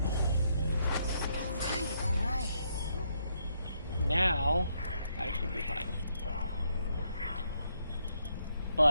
All right. Now, I should be fine.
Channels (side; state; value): both; inverted; correlation -0.75